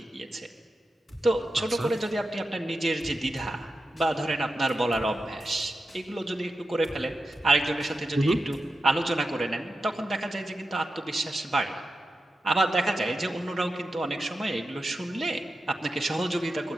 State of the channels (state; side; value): normal; both; correlation 0.90